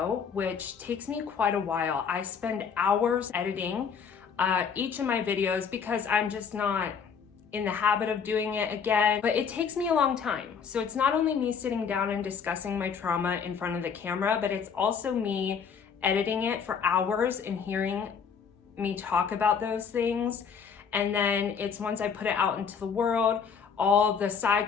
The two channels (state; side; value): quieter; right; 6.6 dB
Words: which takes me quite a while. I spend hours editing each of my videos because I'm just not in the habit of doing it again, but it takes me a long time. So it's not only me sitting down and discussing my trauma in front of the camera, but it's also me editing it for hours and hearing me talk about those things. And then it's once I put it out into the world, all the side